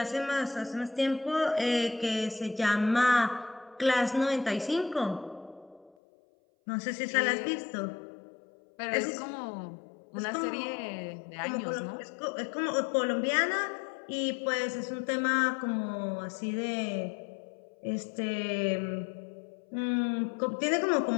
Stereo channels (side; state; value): right; drops out; at 5.9 s